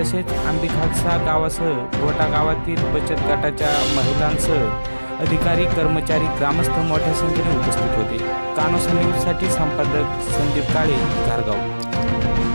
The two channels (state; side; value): inverted; both; correlation -1.00